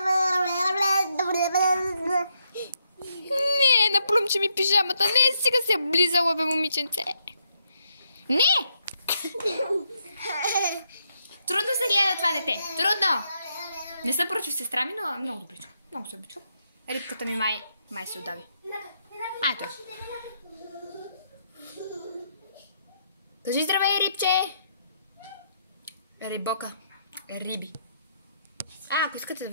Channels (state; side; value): inverted; both; correlation -0.77